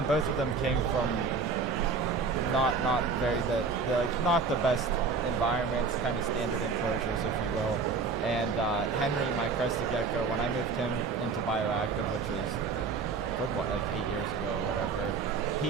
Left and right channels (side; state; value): left; quieter; 4.8 dB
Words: both of them came from not very not the best environments, kind of standard enclosures, if you will. And Henry, my crested gecko, when I moved him into bioactive, which was like 8 years ago or whatever,